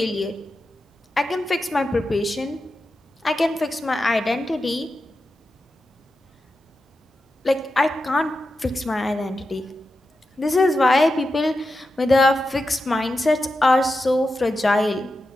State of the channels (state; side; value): normal; both; correlation 0.90